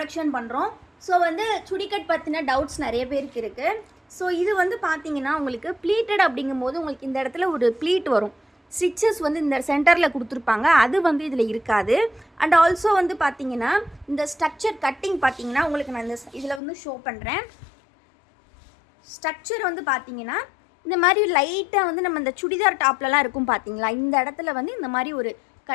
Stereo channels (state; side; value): drops out; right; at 16.6 s